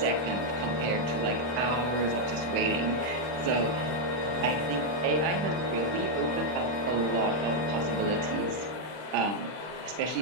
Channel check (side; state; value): left; late; 39 ms